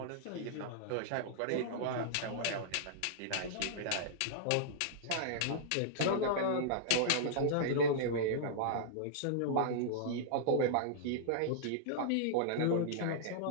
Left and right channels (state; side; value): different; both; correlation -0.02